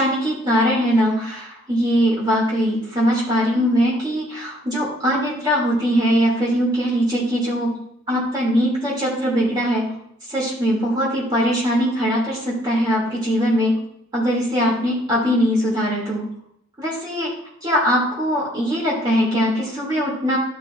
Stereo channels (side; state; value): both; normal; correlation 0.63